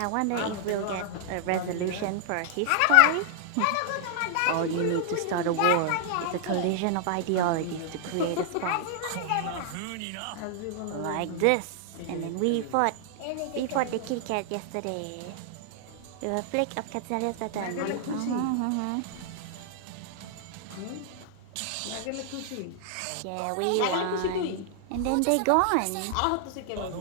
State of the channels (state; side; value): different; both; correlation -0.01